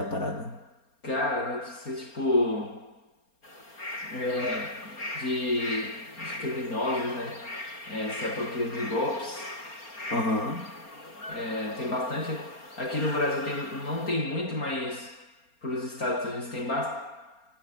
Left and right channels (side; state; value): right; late; 4.3 ms